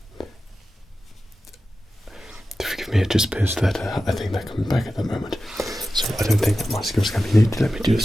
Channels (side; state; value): both; normal; correlation 0.93